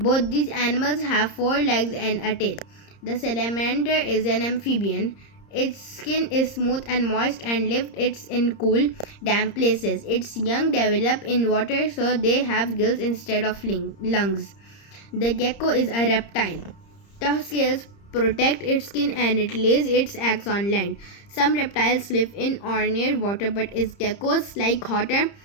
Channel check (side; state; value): right; late; 30 ms